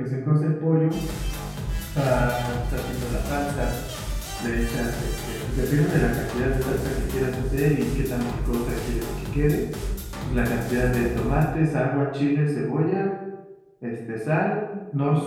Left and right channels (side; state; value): both; identical; correlation 1.00